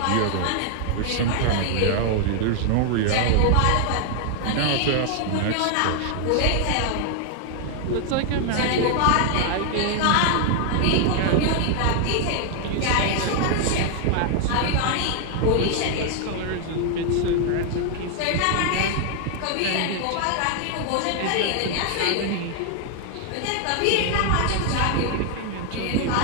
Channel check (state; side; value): different; both; correlation 0.00